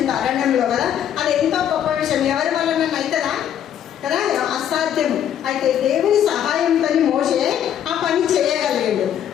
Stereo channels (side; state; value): right; quieter; 9.9 dB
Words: అరణ్యంలో కదా. అది ఎంతో గొప్ప విషయం. ఎవరి వల్ల అవుతుందా కదా? అసాధ్యం. అయితే దేవుని సహాయంతో మోషే ఆ పని చేయగలిగాడు.